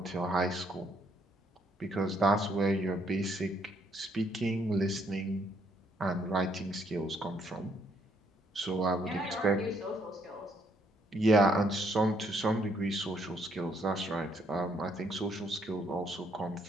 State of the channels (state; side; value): normal; both; correlation 0.70